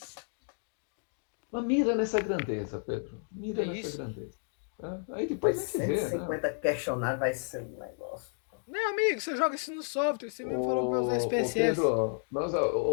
Mas mira nessa grandeza, Pedro. É Mira nessa isso. grandeza. Tá? Aí depois Mas a gente vê, né? 150 questionários vai ser um negócio. Meu amigo, você joga isso no software. Você mesmo falou para usar Ô SPSS. Pedro,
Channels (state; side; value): silent; right; 57 dB below the other